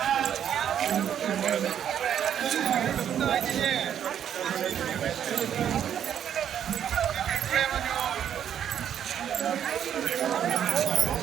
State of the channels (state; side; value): quieter; left; 9.4 dB